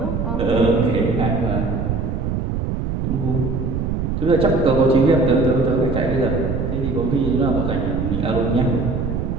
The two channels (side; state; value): right; noise; rumble, 2 dB below the sound